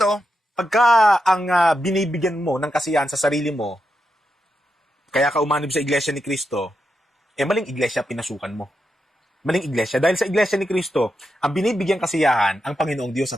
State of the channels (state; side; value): normal; both; correlation 0.86